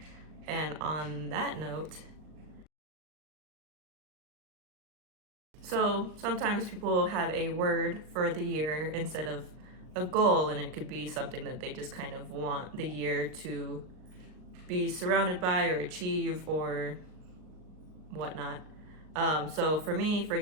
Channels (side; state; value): left; late; 38 ms